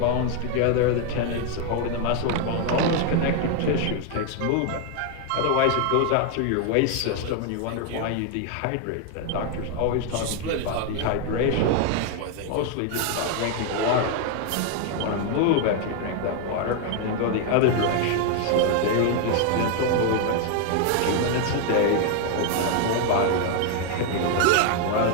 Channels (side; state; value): both; different; correlation 0.01